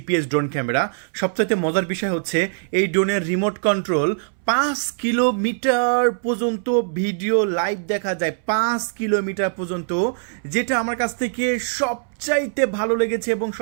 ড্রোন ক্যামেরা। সবচাইতে মজার বিষয় হচ্ছে এই ড্রোনের রিমোট কন্ট্রোল 5 কিলোমিটার পর্যন্ত ভিডিও লাইভ দেখা যায়, 5 কিলোমিটার পর্যন্ত, যেটা আমার কাছ থেকে সবচাইতে ভালো লেগেছে এবং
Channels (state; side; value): silent; left; 63 dB below the other